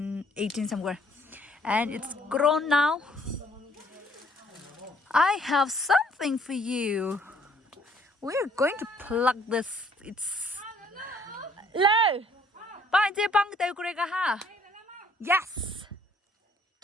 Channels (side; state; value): both; normal; correlation 0.63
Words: 18 somewhere. And it's grown now. I have something for you. We're going to plug this. It's low. Yes.